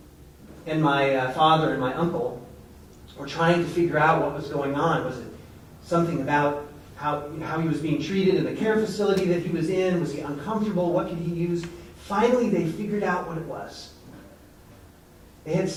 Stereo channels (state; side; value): identical; both; correlation 1.00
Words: And my father and my uncle were trying to figure out what was going on. Was it something about how he was being treated in the care facility that he was in? Was he uncomfortable? What could he use? Finally, they figured out what it was. They had